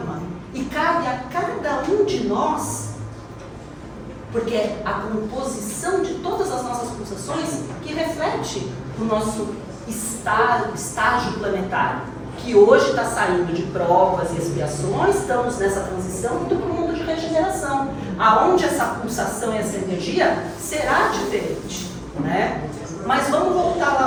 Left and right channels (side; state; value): both; identical; correlation 1.00